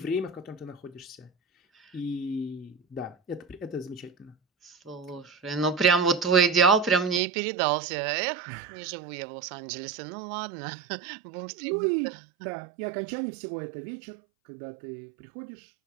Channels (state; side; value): drops out; left; at 7.2 s